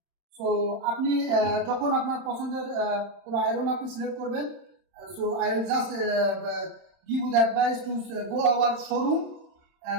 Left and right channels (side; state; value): left; late; 31 ms